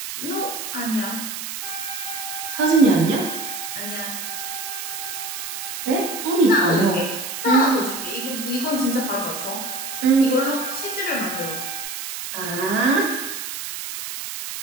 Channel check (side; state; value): right; noise; hiss, 6 dB below the sound